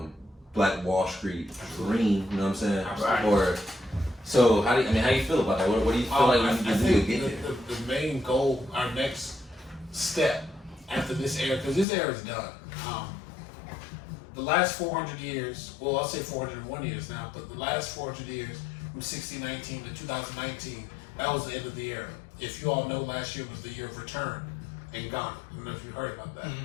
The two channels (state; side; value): drops out; right; at 11.9 s